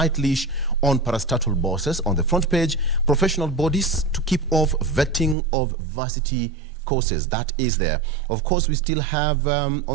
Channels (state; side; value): drops out; left; at 5.4 s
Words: leash on parastatal bosses on the front page. Professional bodies to keep off vetting of varsity courses. That is there. Of course, we still have